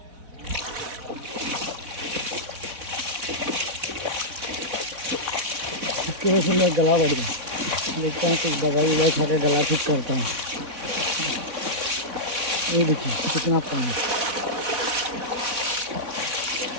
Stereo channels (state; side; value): late; left; 4.0 ms